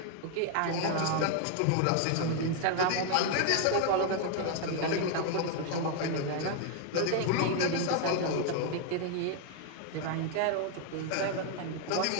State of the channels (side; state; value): both; different; correlation 0.00